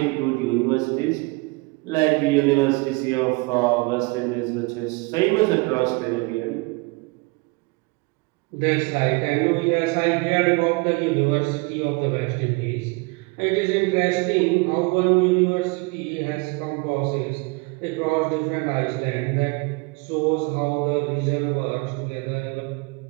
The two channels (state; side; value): quieter; left; 27.3 dB